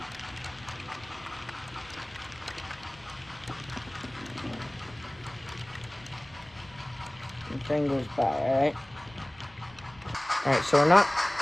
The train goes by, alright? Alright, so we're not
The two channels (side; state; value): left; noise; rumble, 25 dB below the sound